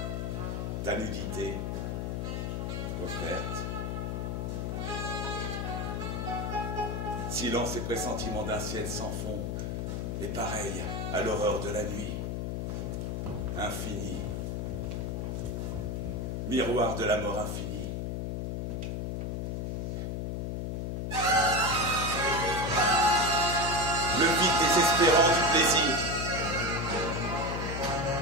Ta nudité offerte. Silence et pressentiment d'un ciel sans fond, et pareil à l'horreur de la nuit. Infini. Miroir de la mort infinie. Le vide désespérant du plaisir.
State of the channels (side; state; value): left; noise; hum, 2 dB below the sound